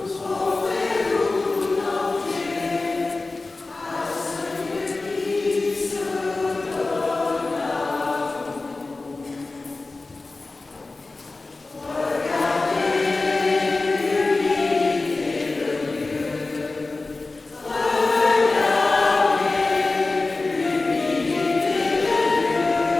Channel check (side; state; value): right; quieter; 3.4 dB